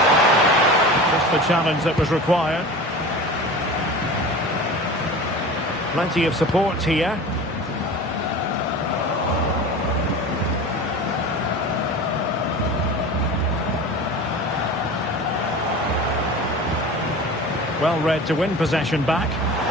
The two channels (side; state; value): both; normal; correlation 0.35